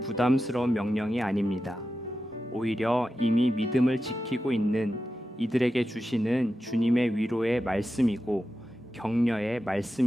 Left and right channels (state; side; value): normal; both; correlation 0.91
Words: 부담스러운 명령이 아닙니다. 오히려 이미 믿음을 지키고 있는 이들에게 주시는 주님의 위로의 말씀이고 격려의